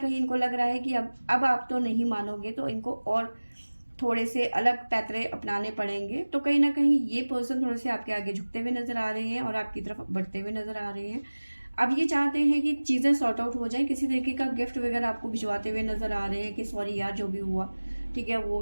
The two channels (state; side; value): inverted; both; correlation -1.00